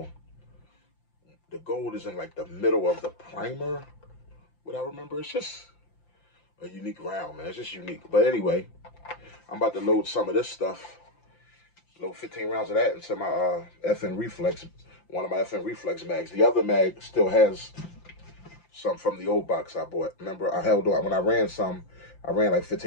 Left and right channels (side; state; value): right; late; 5.8 ms